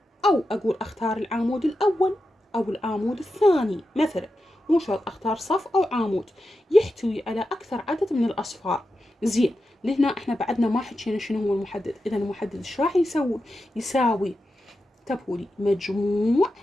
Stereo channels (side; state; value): both; normal; correlation 0.89